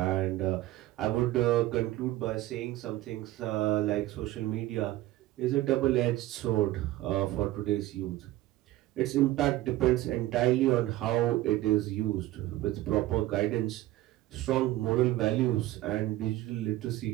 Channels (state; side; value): quieter; left; 16.0 dB